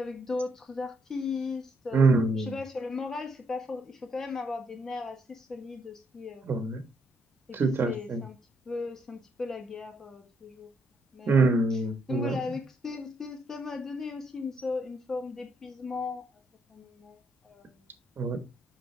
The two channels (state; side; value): normal; both; correlation 0.74